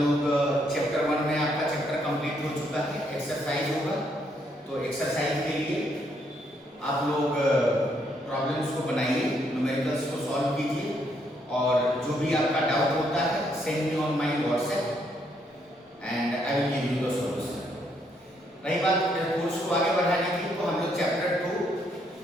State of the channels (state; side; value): normal; both; correlation 0.73